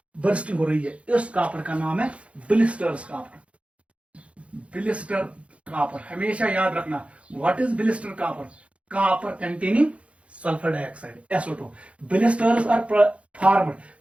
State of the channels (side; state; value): left; late; 0.062 ms